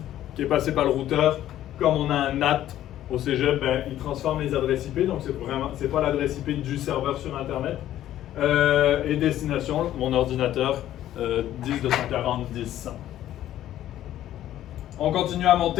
qui est passé par le routeur. Comme on a un NAT au cégep, ben, il transforme les adresses IP, donc c'est pas l'adresse IP du serveur sur Internet. Et destination, mon ordinateur, 10.240.10.100. On continue à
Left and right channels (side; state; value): right; quieter; 12.6 dB